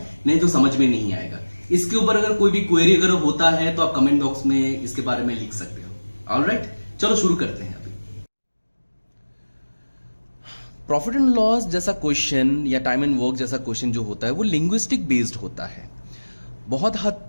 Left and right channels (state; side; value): inverted; both; correlation -1.00